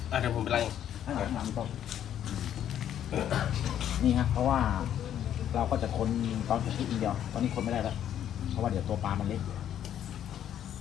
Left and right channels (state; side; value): quieter; right; 10.4 dB